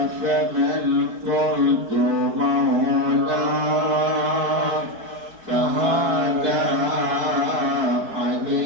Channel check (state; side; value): late; left; 4.6 ms